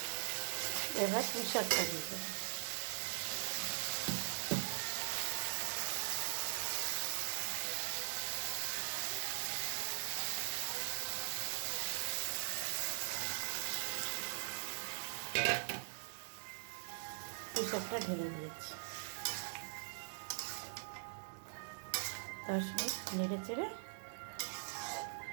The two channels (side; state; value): left; silent; digital silence